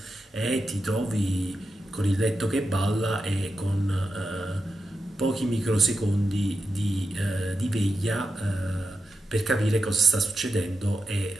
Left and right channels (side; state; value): both; normal; correlation 0.88